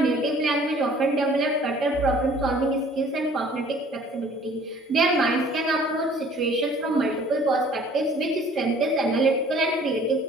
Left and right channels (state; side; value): normal; both; correlation 0.53